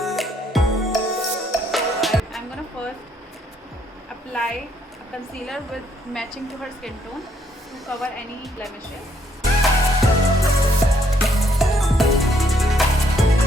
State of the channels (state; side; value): normal; both; correlation 0.70